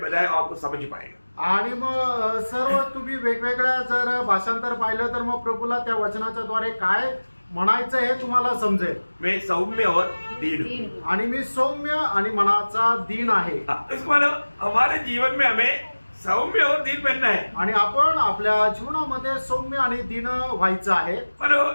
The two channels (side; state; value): both; inverted; correlation -1.00